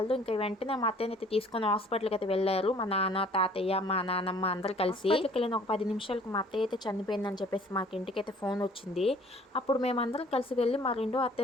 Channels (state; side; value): normal; both; correlation 0.55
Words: ఇంకా వెంటనే మా అత్తయ్యని అయితే తీసుకొని హాస్పిటల్కి అయితే వెళ్ళారు. మా నాన్న, తాతయ్య, మా నాన్నమ్మ అందరు కలిసి. వెళ్ళిన ఒక 10 నిమిషాలకు మా అత్తయ్య అయితే చనిపోయిందని చెప్పేసి మాకు ఇంటికి అయితే ఫోన్ వచ్చింది. అప్పుడు మేమందరం కలిసి వెళ్ళి మా రెండో